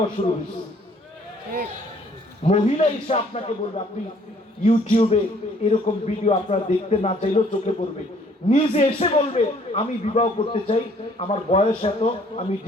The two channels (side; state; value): both; normal; correlation 0.61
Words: শুরু হয়েছে। মহিলা এসে আপনাকে বলবে, আপনি ইউটিউবে এরকম ভিডিও আপনারা দেখতে না চাইলেও চোখে পড়বে, নিজে এসে বলবে আমি বিবাহ করতে চাই, আমার বয়স এত, আমি